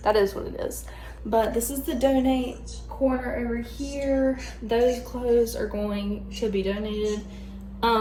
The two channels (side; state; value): both; identical; correlation 1.00